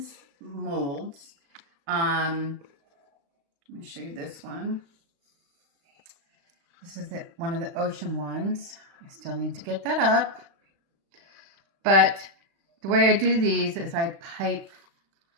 molds. Let me show you this one. This is one of the ocean ones. I still need to get that up. But the way I do these is I pipe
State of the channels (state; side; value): late; left; 36 ms